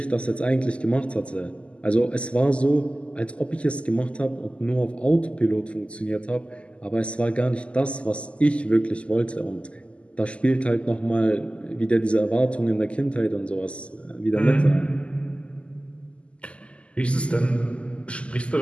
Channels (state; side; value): late; right; 0.056 ms